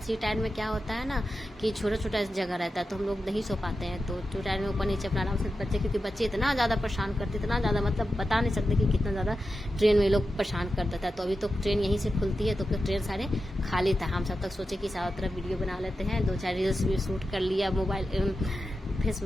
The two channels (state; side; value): normal; both; correlation 0.91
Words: 3 टायर में क्या होता है ना कि छोटा जगह रहता है, तो हम लोग नहीं सो पाते हैं। तो 2 टायर में ऊपर नीचे अपना आराम से बच्चे, क्योंकि बच्चे इतना ज्यादा परेशान करते, इतना ज्यादा, मतलब बता नहीं सकते कि कितना ज्यादा ट्रेन में लोग परेशान कर देता है। तो अभी तो ट्रेन यहीं से खुलती है, तो ट्रेन सारे खाली था। हम सब तक सोचे कि सारा तरफ वीडियो बना लेते हैं, 2-4 रील्स भी शूट कर लिया, मोबाइल